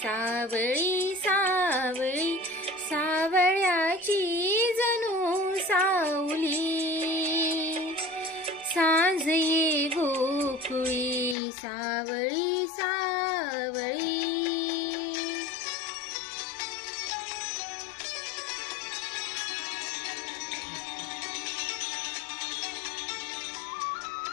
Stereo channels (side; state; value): right; drops out; at 11.4 s